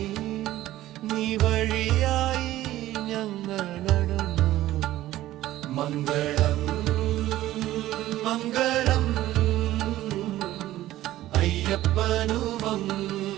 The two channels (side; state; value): left; quieter; 14.9 dB